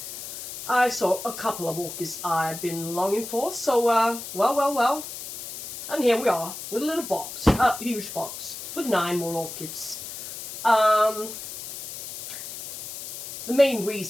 I saw a couple of orchids I've been longing for, so well, and here we are with a little box, a huge box with 9 more orchids. The main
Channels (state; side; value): noise; left; hiss, 9 dB below the sound